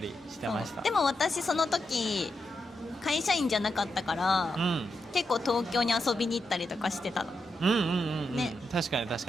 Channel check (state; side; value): normal; both; correlation 0.85